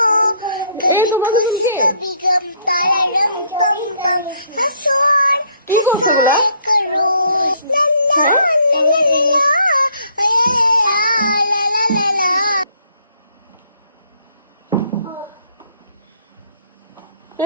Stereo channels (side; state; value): both; inverted; correlation -0.65